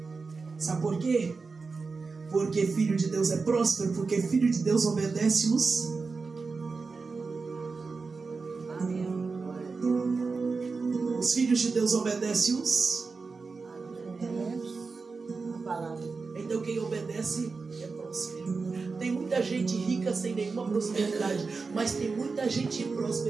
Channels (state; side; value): quieter; left; 4.4 dB